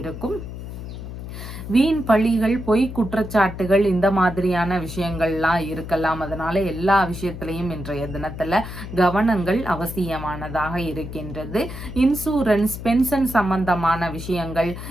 வீண் பழிகள், பொய் குற்றச்சாட்டுகள், இந்த மாதிரியான விஷயங்கள்லாம் இருக்கலாம். அதனால எல்லா விஷயத்திலையும் இன்றைய தினத்துல கவனங்கள் அவசியமானதாக இருக்கின்றது. இன்சூரன்ஸ், பென்ஷன் சம்பந்தமான விஷயங்கள்,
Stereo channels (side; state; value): left; noise; hum, 9 dB below the sound